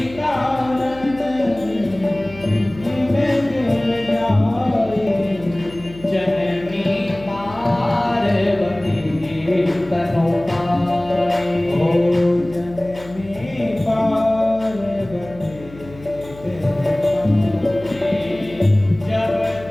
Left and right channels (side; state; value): left; noise; hum, 19 dB below the sound